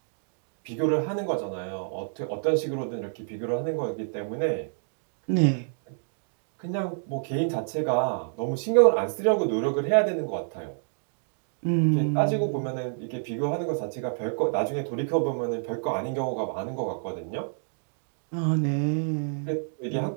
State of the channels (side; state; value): left; silent; digital silence